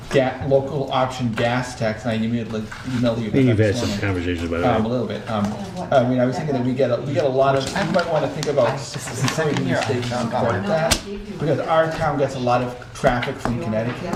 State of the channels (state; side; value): identical; both; correlation 1.00